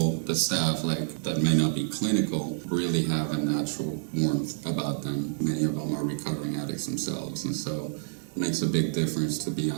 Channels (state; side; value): silent; left; 59 dB below the other